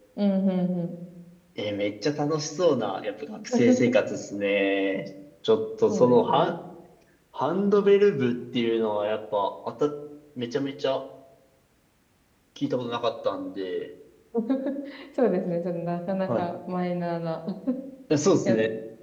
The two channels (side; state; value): both; identical; correlation 1.00